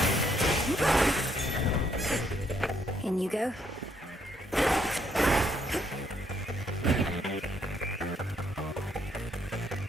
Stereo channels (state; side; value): normal; both; correlation 0.71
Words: In you go.